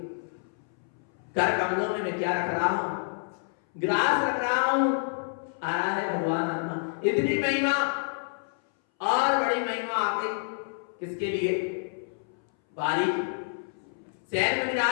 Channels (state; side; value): silent; right; 59 dB below the other